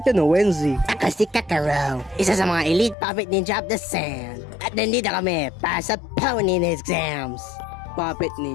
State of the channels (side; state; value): right; drops out; at 3.0 s